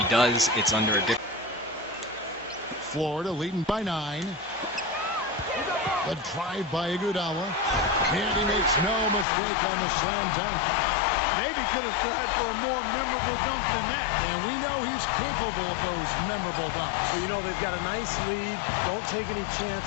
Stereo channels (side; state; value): right; drops out; at 9.2 s